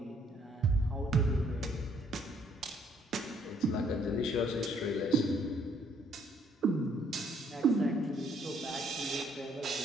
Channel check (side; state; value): both; normal; correlation 0.66